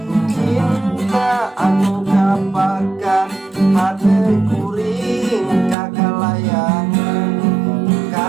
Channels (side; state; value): left; drops out; at 5.8 s